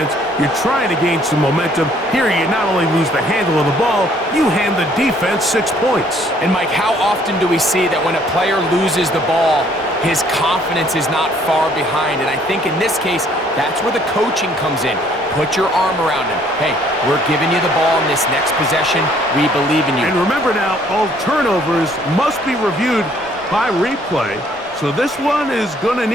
You're trying to gain some momentum. Here you not only lose the handle of the ball, you hand the defense 6 points. And Mike, how often do we see that when a player loses the ball, his confidence is not far behind? And I think in this case, that's where the coaching comes in. Put your arm around him. Hey, we're giving you the ball in this next possession. We believe in you. And remember now, all turnovers must be reviewed by replay. So this one is going to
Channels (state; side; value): normal; both; correlation 0.62